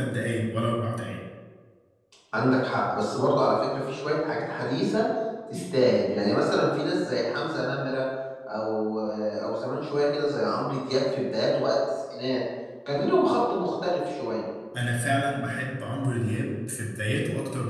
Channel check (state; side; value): identical; both; correlation 1.00